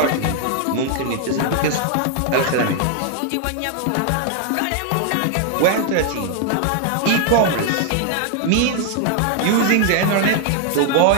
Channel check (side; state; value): both; different; correlation 0.00